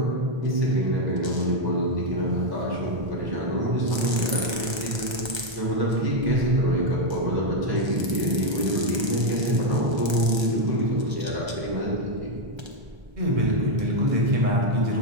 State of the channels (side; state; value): left; late; 1.3 ms